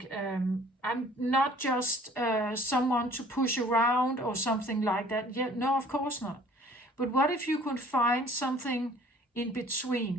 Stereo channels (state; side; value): normal; both; correlation 0.53